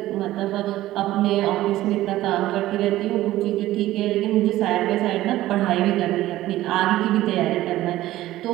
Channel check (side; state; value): left; quieter; 15.4 dB